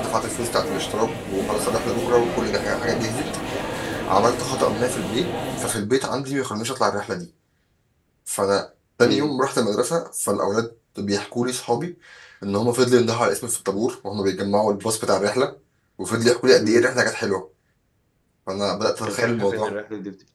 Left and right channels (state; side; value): identical; both; correlation 1.00